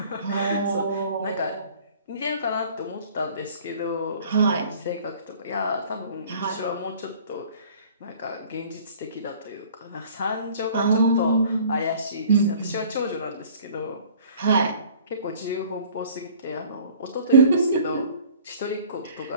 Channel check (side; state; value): both; inverted; correlation -0.51